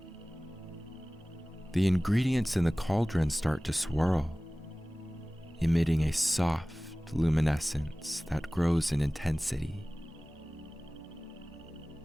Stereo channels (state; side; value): normal; both; correlation 0.98